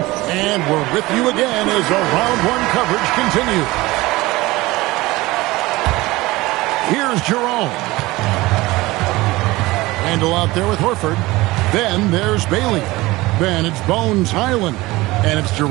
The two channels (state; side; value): quieter; left; 20.0 dB